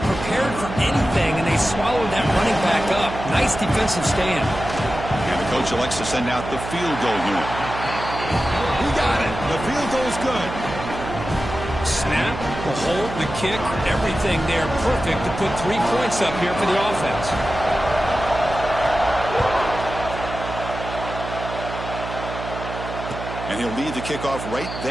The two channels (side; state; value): right; noise; hum, 8 dB below the sound